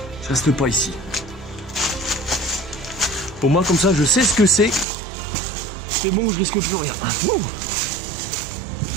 Je reste pas ici. Au moins comme ça je sais ce que c'est. C'est bon, je risque plus rien. Ouh.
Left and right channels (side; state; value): left; drops out; at 4.9 s